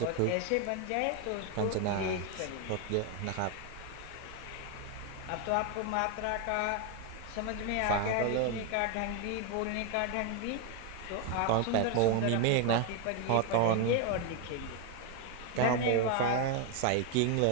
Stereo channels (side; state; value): both; different; correlation 0.01